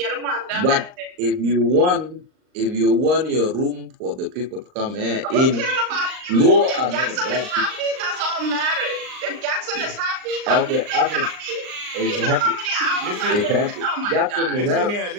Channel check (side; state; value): left; late; 39 ms